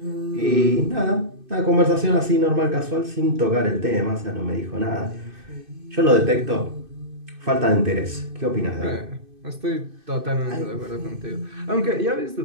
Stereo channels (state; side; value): late; left; 2.6 ms